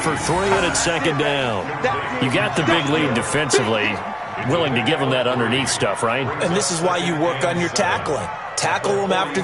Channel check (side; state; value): both; identical; correlation 1.00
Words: for 3, and it's second down. You got the big lead defensively. Willing to give them that underneath stuff, right? And this is why you work on your tackling. Tackle them after